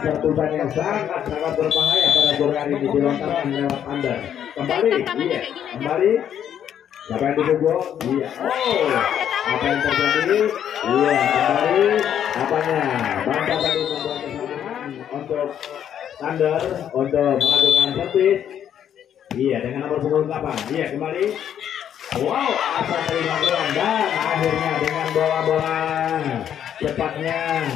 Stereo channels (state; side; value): quieter; right; 9.6 dB